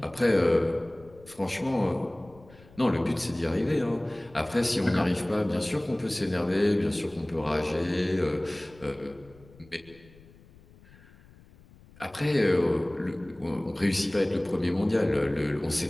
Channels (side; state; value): left; noise; rumble, 25 dB below the sound